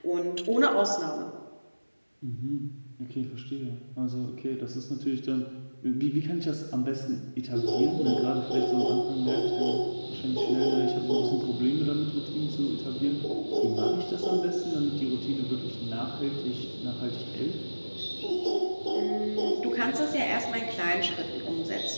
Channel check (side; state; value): both; inverted; correlation -1.00